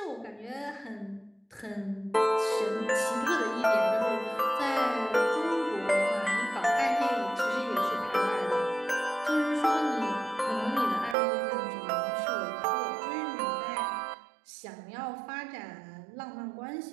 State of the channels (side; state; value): left; drops out; at 11.2 s